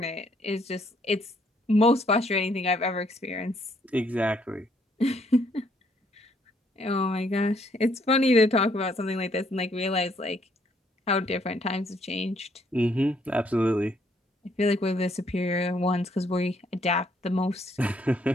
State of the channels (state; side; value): normal; both; correlation 0.69